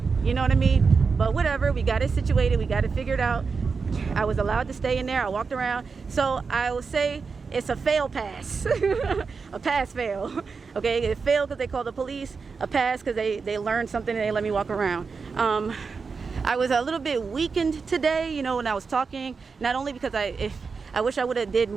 You know what I mean? But whatever, we got it situated. We got it figured out. I was allowed to stay in there. I walked around. So I will say it's a fail pass. A pass fail. Okay, it failed because they called the police. A pass because they learned something and they let me walk around. I was a little bit weakened today, you know, when I was talking. Not only because I wish I would have did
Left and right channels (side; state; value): left; quieter; 5.0 dB